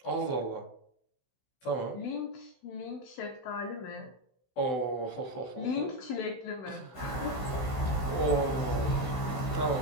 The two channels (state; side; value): late; right; 16 ms